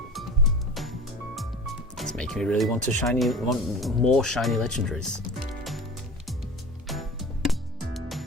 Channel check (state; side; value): normal; both; correlation 0.37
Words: me really want more shiny legendaries.